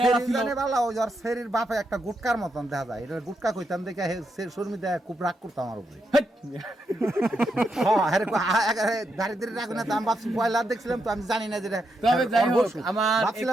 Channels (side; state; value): both; normal; correlation 0.82